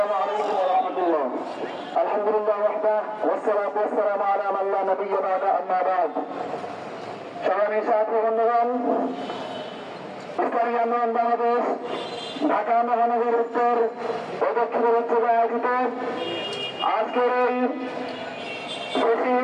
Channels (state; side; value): identical; both; correlation 1.00